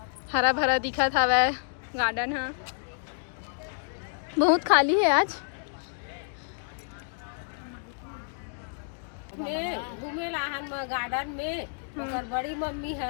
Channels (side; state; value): right; silent; digital silence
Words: हरा भरा दिखा था वह गार्डन। हाँ बहुत खाली है आज। मैं घूमे लाहन में गार्डन में। ओकर बड़ी मम्मी